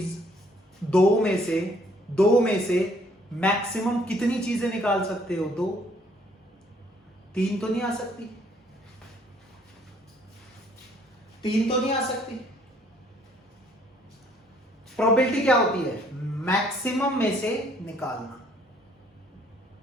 दो में से मैक्सिमम कितनी चीजें निकाल सकते हो? दो, तीन तो नहीं आ सकती, तीन तो नहीं आ सकती। प्रोबेबिलिटी क्या होती है? मैक्सिमम में से निकालना।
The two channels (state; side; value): normal; both; correlation 0.63